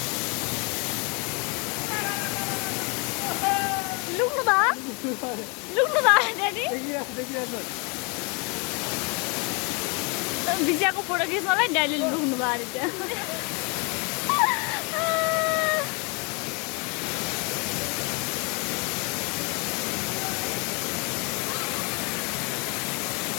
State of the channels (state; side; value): quieter; right; 32.9 dB